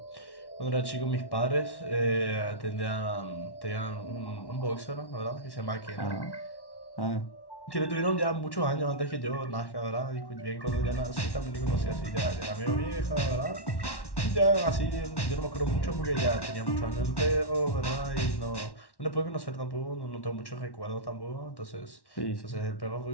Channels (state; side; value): late; right; 1.1 ms